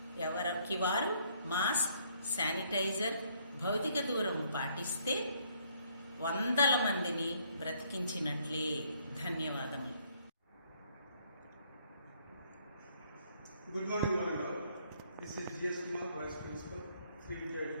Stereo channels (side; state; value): both; inverted; correlation -0.66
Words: ఎవరికి వారు మాస్క్, శానిటైజర్, భౌతిక దూరం పాటిస్తే 100 మందిని బ్రతికించినట్లే. ధన్యవాదములు. Good morning, one and all. This is G.S. Kumar, Vice Principal, Sri Vidya